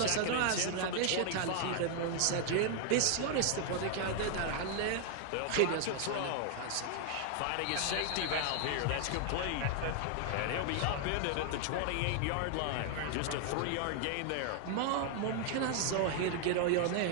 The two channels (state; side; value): different; both; correlation 0.00